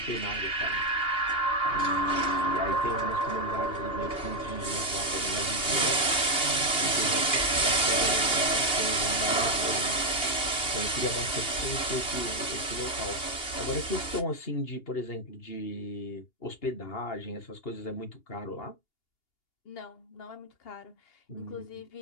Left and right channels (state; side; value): late; right; 2.8 ms